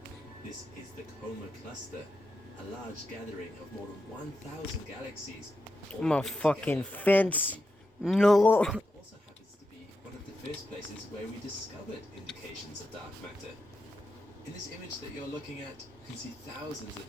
This is the Coma Cluster, a large gathering of more than 1,000 galaxies. I'm a fucking fence. No. It also happens to be one of the first places where we discovered indications of dark matter. In this image that you're looking at, you can see thousands of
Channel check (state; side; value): normal; both; correlation 0.87